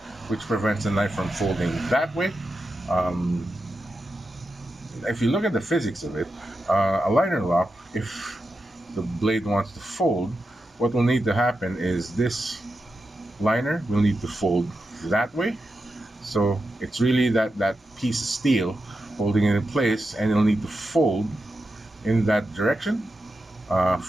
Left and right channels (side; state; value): both; normal; correlation 0.89